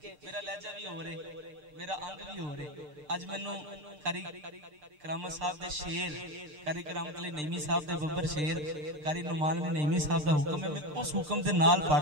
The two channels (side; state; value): left; late; 6.7 ms